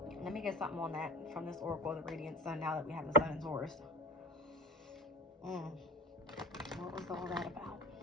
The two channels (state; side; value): normal; both; correlation 0.32